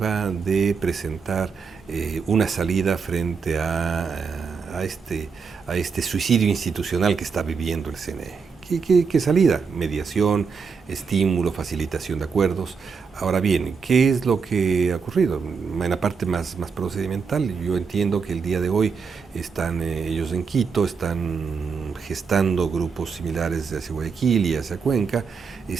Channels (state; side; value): quieter; left; 5.6 dB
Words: de presentar una salida frente a este suicidio institucional que está viviendo el CNE. ¿Qué salida? Mediación, estímulo, facilitación de acuerdos. Ahora bien, ¿qué es lo que ha ocurrido? En la parte más procedimental, yo entiendo que el día de hoy están ellos en Quito, están gestando grupos similares hacia Guayaquil y hacia Cuenca,